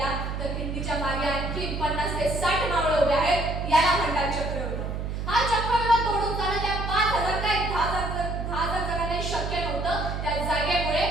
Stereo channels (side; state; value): right; noise; hum, 4 dB below the sound